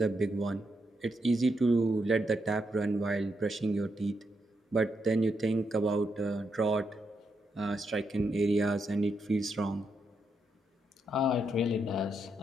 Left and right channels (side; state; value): both; normal; correlation 0.81